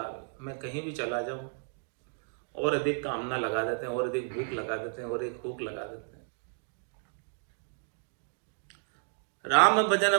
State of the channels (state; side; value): silent; left; 56 dB below the other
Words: मैं कहीं भी चला जाऊं और अधिक कामना लगा देते हैं, और अधिक भूख लगा देते हैं, और एक भूख लगा देते हैं। राम भजन